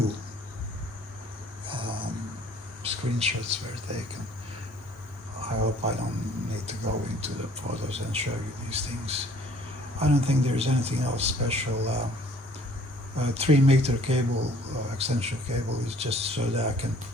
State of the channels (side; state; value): both; normal; correlation 0.57